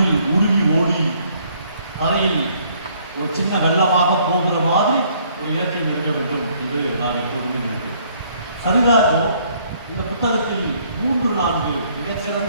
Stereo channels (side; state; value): both; inverted; correlation -0.64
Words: உருகி ஓடி கரையில் ஒரு சின்ன வெள்ளமாக போகிற மாதிரி ஒரு இலக்கியம் இருக்க வேண்டும் என்று நான் எப்போதுமே நினைக்கிறேன். சரிதாகோ இந்த புத்தகத்தில் 3-4